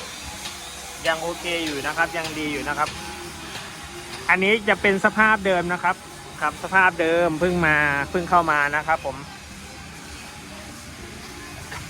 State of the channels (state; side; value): identical; both; correlation 1.00